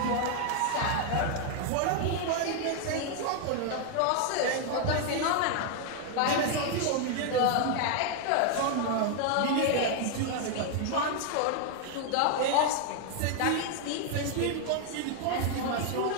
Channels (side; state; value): both; different; correlation 0.00